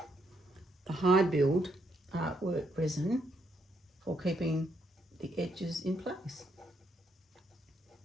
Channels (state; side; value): normal; both; correlation 0.76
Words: Hi Build Artwork Resin, for keeping the edges in place.